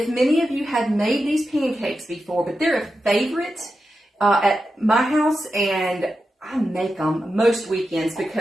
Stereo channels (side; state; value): both; normal; correlation 0.90